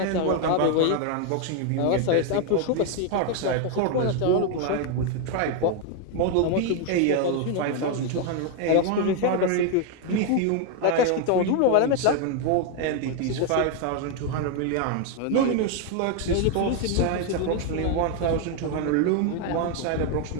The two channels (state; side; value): different; both; correlation 0.01